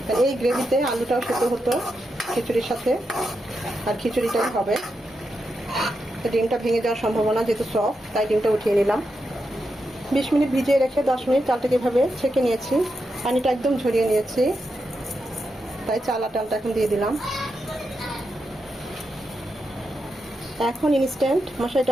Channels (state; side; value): normal; both; correlation 0.86